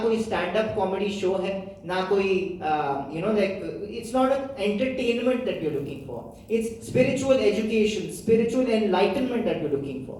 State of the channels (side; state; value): both; identical; correlation 1.00